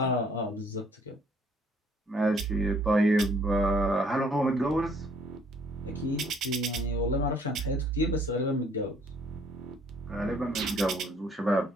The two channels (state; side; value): normal; both; correlation 0.61